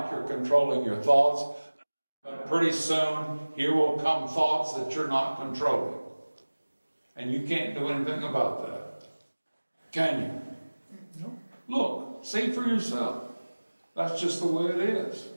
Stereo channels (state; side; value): inverted; both; correlation -1.00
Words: you're controlling your thoughts. But pretty soon, here will come thoughts that you're not controlling. And you can't do anything about that. Can you? No. Look, see for yourself. That's just the way it is.